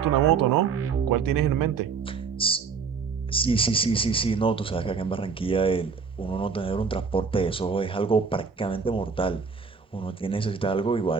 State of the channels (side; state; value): left; quieter; 5.5 dB